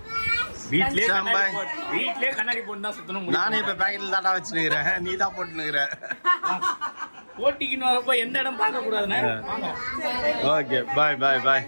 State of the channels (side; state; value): both; inverted; correlation -1.00